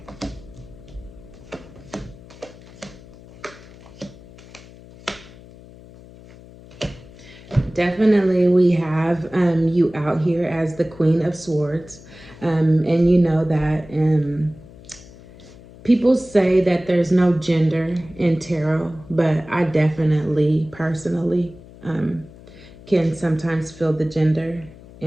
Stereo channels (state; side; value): noise; left; hum, 20 dB below the sound